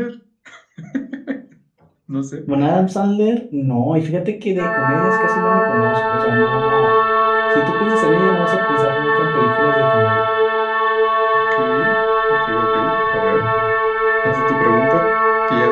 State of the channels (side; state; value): both; identical; correlation 1.00